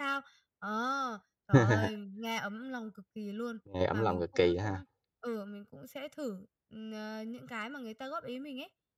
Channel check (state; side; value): identical; both; correlation 1.00